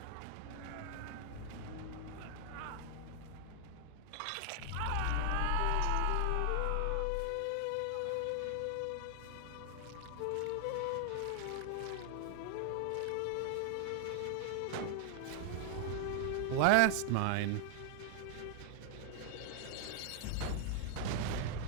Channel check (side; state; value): both; different; correlation 0.00